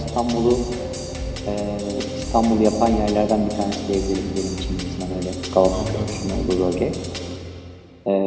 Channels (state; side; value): identical; both; correlation 1.00